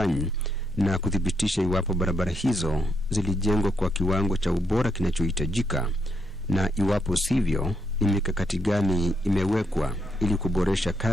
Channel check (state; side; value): normal; both; correlation 0.78